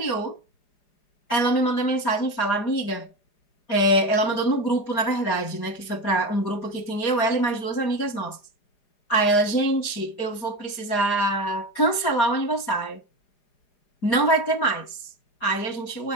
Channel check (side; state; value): right; late; 4.9 ms